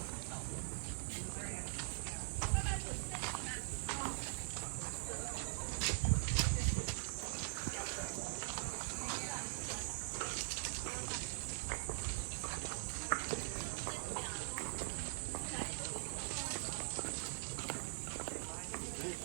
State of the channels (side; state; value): left; silent; digital silence